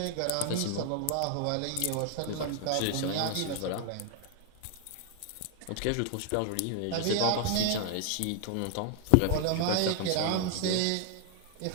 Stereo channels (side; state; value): both; different; correlation 0.00